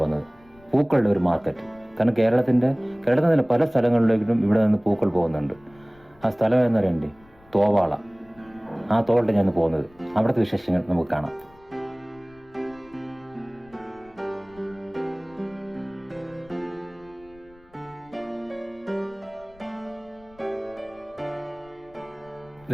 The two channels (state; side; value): noise; left; rumble, 27 dB below the sound